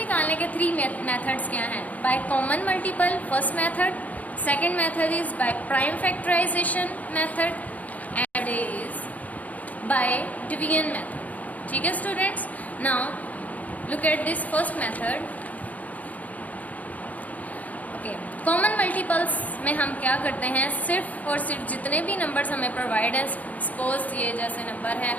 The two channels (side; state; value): right; late; 0.075 ms